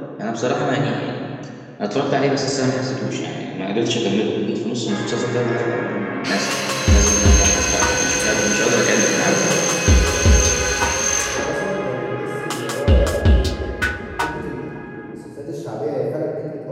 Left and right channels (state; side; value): identical; both; correlation 1.00